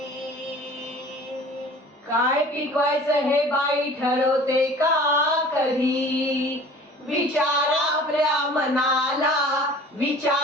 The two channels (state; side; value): normal; both; correlation 0.46